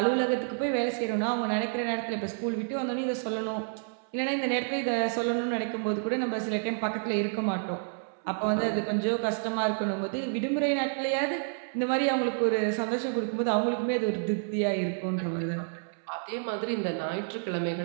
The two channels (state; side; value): silent; left; 58 dB below the other